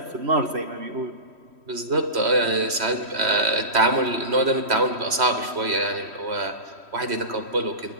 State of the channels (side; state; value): left; late; 3.1 ms